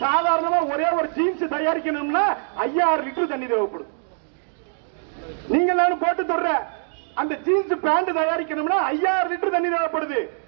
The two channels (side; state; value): left; silent; digital silence